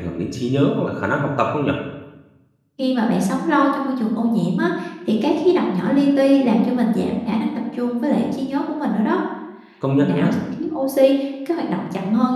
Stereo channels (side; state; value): both; identical; correlation 1.00